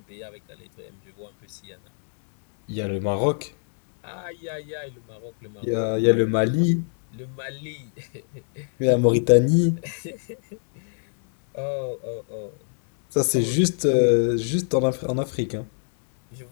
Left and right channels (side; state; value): right; silent; digital silence